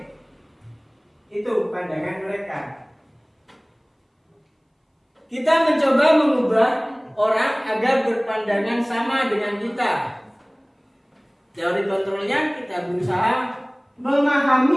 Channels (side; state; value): both; identical; correlation 1.00